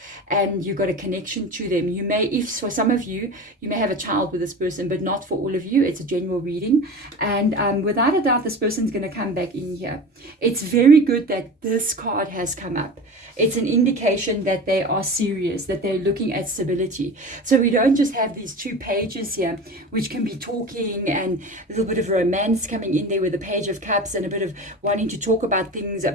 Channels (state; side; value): normal; both; correlation 0.33